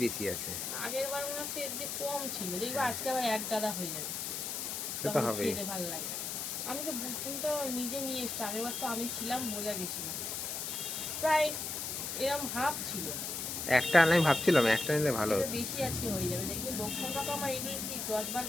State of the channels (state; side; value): noise; left; hiss, 3 dB below the sound